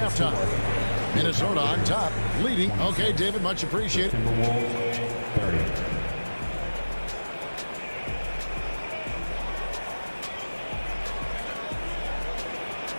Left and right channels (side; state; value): both; inverted; correlation -1.00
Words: Minnesota on top, leading. Okay, David, much appreciated. Timberwolves 30.